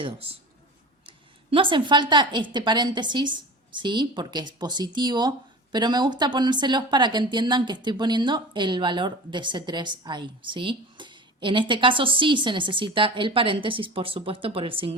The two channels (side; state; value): both; normal; correlation 0.34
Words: No hacen falta este paréntesis, ¿sí? Porque es positivo, pero me gusta ponérselos para que entiendan que estoy poniendo el valor de C3 ahí, ¿sí? En este caso sí se necesita el paréntesis, por supuesto, por el